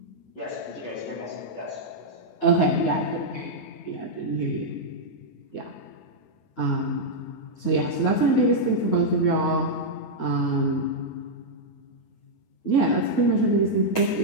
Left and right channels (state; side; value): late; right; 9.4 ms